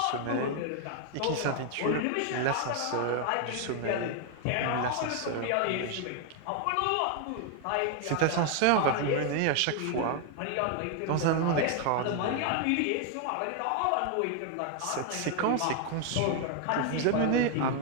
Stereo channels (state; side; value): different; both; correlation 0.00